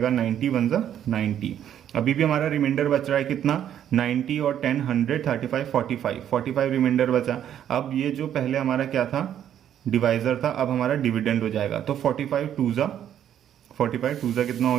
90 1 जा 90। अभी भी हमारा रिमाइंडर बच रहा है कितना, 90 और 10 100 35 45 रिमाइंडर बचा। अब ये जो पहले हमारा क्या था, डिवाइजर था, अब हमारा डिविडेंड हो जाएगा, तो 45 टू जा कितना हो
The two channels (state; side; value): quieter; left; 10.2 dB